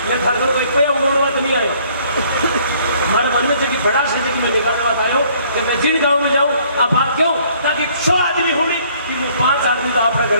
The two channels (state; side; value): inverted; both; correlation -0.61